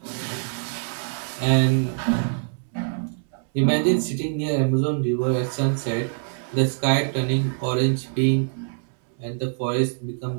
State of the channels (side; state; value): left; silent; 62 dB below the other